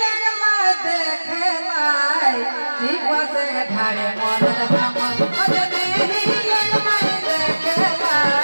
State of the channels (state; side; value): inverted; both; correlation -1.00